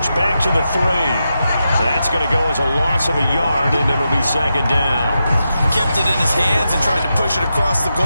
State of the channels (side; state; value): both; inverted; correlation -0.88